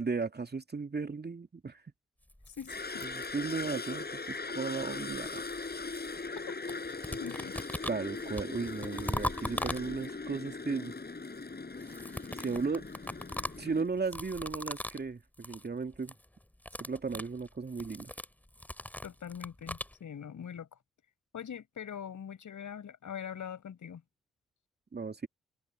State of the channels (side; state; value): both; normal; correlation 0.49